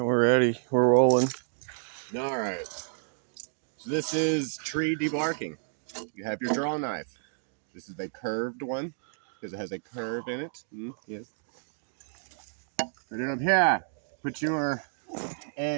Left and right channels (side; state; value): left; silent; digital silence